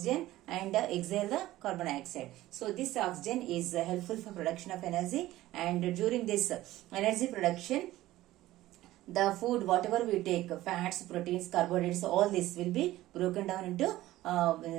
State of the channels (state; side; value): quieter; left; 15.9 dB